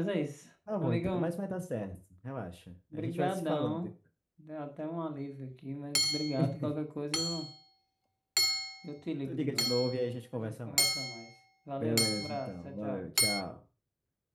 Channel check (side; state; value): both; identical; correlation 1.00